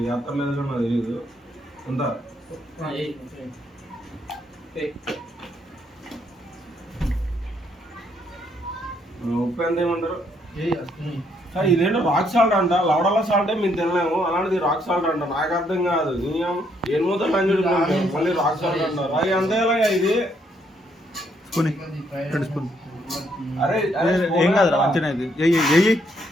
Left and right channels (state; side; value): normal; both; correlation 0.72